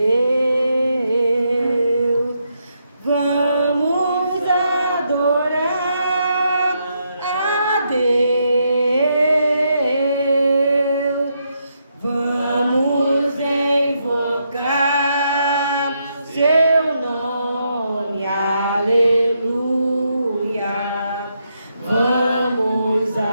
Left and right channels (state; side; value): inverted; both; correlation -0.79